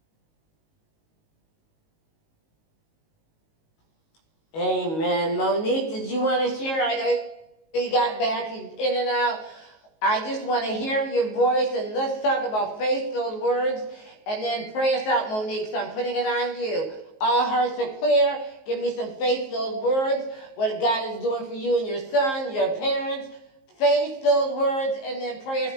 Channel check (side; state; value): right; late; 19 ms